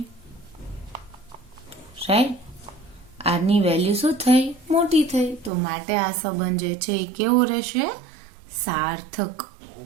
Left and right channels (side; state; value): left; drops out; at 5.5 s